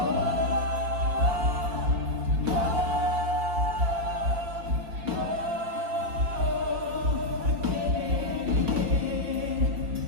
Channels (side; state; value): left; late; 5.1 ms